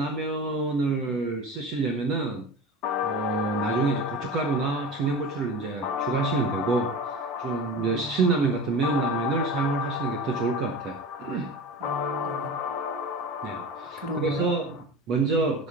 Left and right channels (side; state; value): both; normal; correlation 0.32